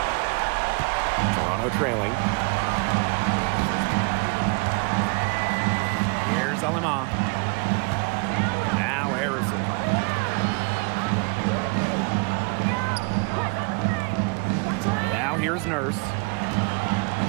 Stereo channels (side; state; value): left; quieter; 31.5 dB